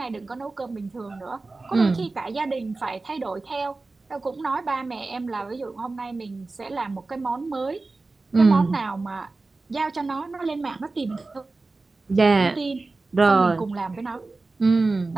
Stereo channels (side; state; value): left; quieter; 3.5 dB